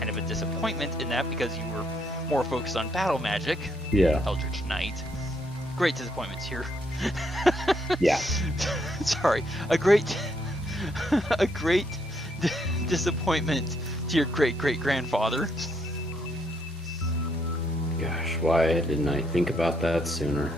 of a disappointment in that because you were more focused on battle magic, Yeah. Eldritch Knight. Great disappointments here. Yeah. Sorry, a great disappointment to your great-great-grandfather. Gosh, why didn't I think about that sooner?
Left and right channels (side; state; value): both; normal; correlation 0.73